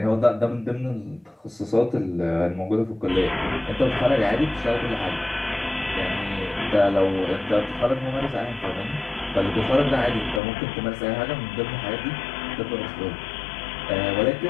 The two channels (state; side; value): drops out; right; at 10.4 s